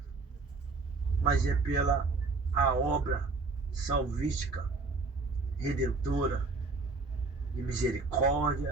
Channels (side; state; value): left; quieter; 3.8 dB